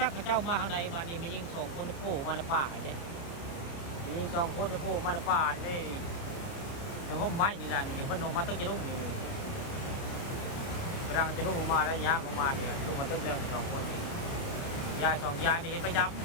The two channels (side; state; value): right; late; 30 ms